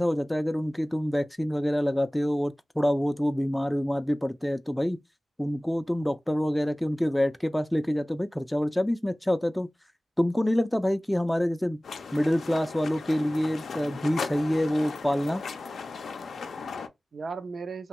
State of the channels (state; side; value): normal; both; correlation 0.98